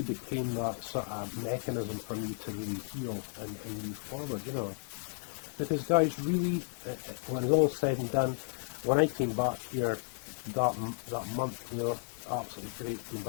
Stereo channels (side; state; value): right; quieter; 35.2 dB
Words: became that sort of mechanism for me to really heal and move forward, you know. Because guys, really, when it's all said and done, when I came back here that month, you know, absolutely great being